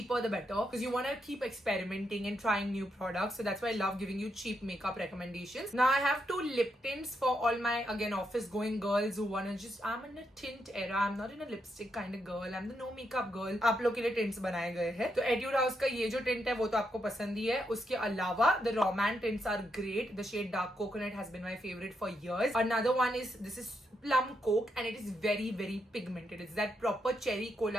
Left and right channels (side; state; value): both; normal; correlation 0.81